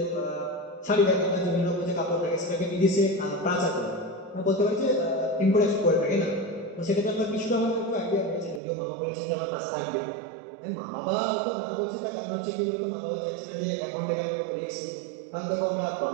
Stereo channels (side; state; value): left; drops out; at 8.6 s